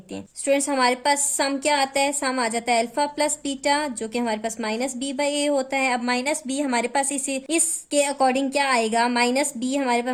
हैं। स्टूडेंट्स हमारे पास सम क्या आता है, सम आ जाता है अल्फा प्लस बीटा, जो कि हमारे पास माइनस बी बाई ए होता है। अब माइनस बी हमारे पास इसके अकॉर्डिंग क्या आएगा, माइनस बी हमारे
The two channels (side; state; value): both; identical; correlation 1.00